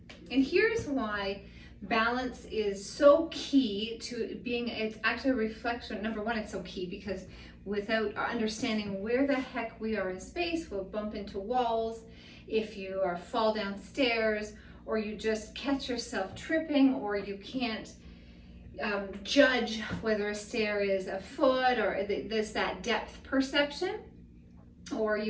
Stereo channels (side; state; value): both; identical; correlation 1.00